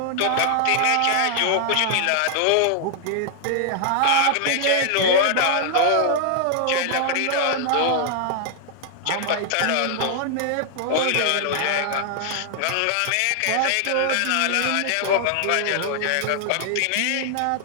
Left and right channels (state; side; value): different; both; correlation 0.00